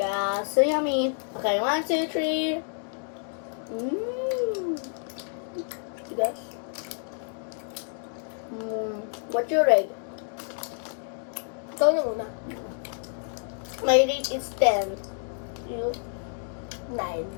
so yummy. Okay, 1, 2, 3. Mmm. Guys. What's your rate? Ikaw na muna. My rate is 10. You? 9.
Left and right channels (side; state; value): right; silent; 59 dB below the other